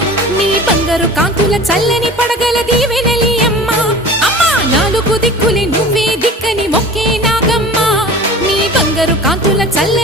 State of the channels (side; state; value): both; normal; correlation 0.40